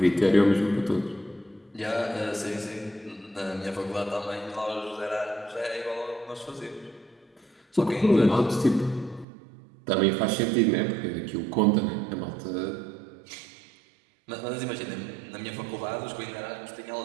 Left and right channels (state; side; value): drops out; left; at 9.2 s